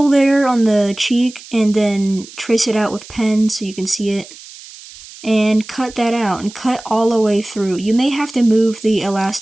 there on the cheek, and then trace it out with pen so you can see it. And cut that out, and cut all the way through. You may have to move the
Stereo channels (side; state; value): right; noise; hiss, 18 dB below the sound